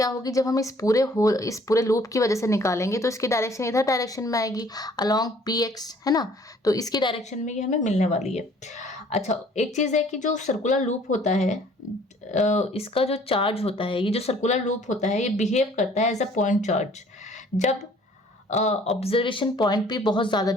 होगी, जब हम इस पूरे loop की वजह से निकालेंगे तो इसकी डायरेक्शन इधर डायरेक्शन में आएगी अलोंग px, है ना, तो इसकी डायरेक्शन में ये हमें मिलने वाली है। अच्छा एक चीज़ है कि जो सर्कुलर लूप होता है इसका जो चार्ज होता है, ये जो सर्कुलर लूप होता है ये बिहेव करता है एज अ पॉइंट चार्ज जब ऑब्जर्वेशन पॉइंट भी बहुत ज़्यादा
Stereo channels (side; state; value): both; normal; correlation 0.56